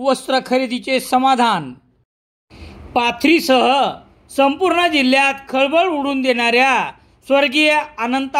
खरेदीचे समाधान। पाथरीसह संपूर्ण जिल्ह्यात खळबळ उडवून देणाऱ्या स्वर्गीय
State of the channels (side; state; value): both; identical; correlation 1.00